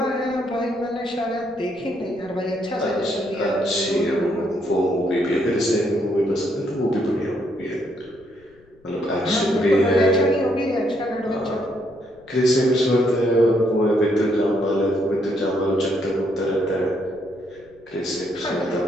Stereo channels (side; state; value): left; noise; rumble, 29 dB below the sound